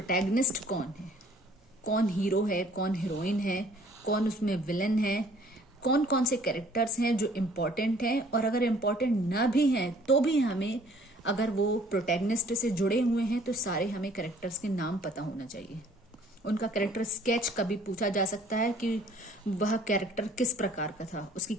कौन है, कौन हीरो है, कौन हीरोइन है, कौन उसमें विलन है, कौन कौन से कैरेक्टर्स हैं जो इम्पोर्टेंट हैं, और अगर इम्पोर्टेंट ना भी हैं तो भी हमें, अगर वो प्रोटैगनिस्ट से जुड़े हुए हैं तो सारे हमें कैरेक्टर्स के नाम पता होना चाहिए। उनका कैरेक्टर स्केच कभी पूछा जा सकता है कि वह कैरेक्टर किस प्रकार का था, उसकी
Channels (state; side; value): normal; both; correlation 0.57